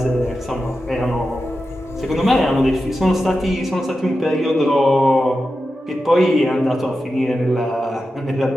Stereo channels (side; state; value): both; normal; correlation 0.91